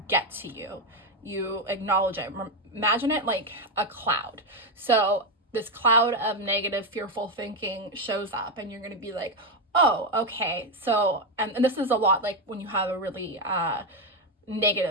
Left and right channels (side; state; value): both; normal; correlation 0.08